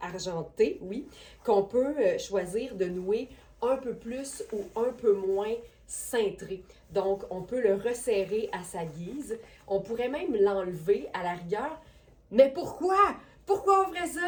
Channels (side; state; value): both; identical; correlation 1.00